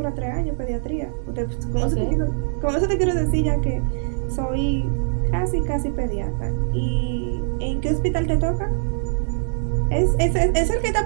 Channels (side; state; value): left; silent; 64 dB below the other